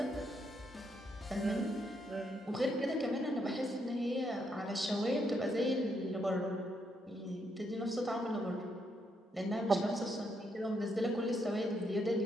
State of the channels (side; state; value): both; normal; correlation 0.77